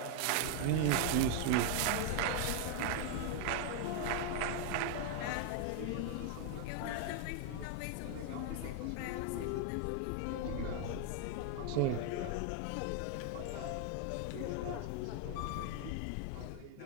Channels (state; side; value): different; both; correlation 0.00